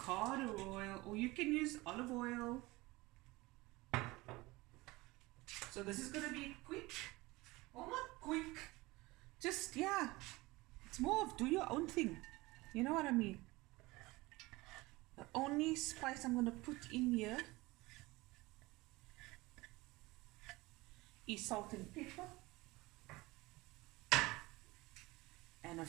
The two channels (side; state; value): left; quieter; 21.4 dB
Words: oil, or you can use olive oil. So this is going to be quick. Well, not quick. Just, yeah. It's more of do your own thing. You know what I mean? The only spice I'm going to put in here is salt and pepper. And